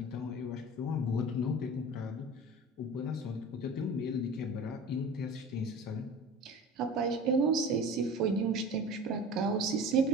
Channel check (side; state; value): both; normal; correlation 0.37